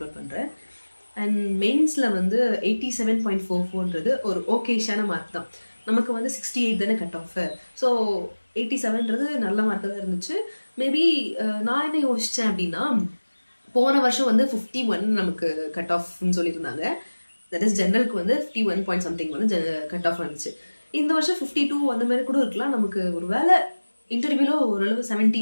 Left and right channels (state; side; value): inverted; both; correlation -1.00